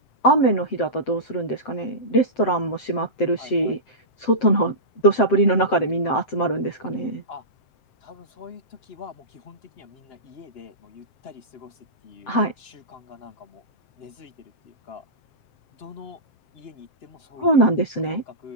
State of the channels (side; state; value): right; late; 7.7 ms